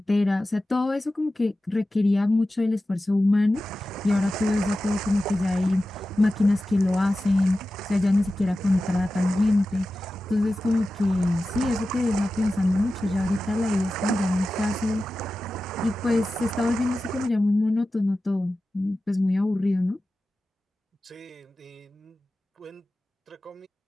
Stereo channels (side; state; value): both; normal; correlation 0.94